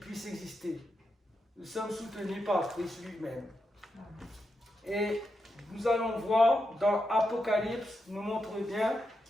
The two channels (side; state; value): both; normal; correlation 0.86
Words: exister. Nous sommes soutenus par Christ lui-même. Et nous allons voir dans Apocalypse, nous montre bien